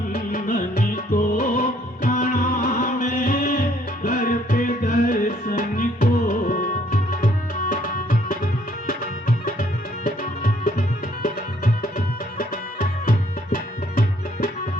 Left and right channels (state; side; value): normal; both; correlation 0.65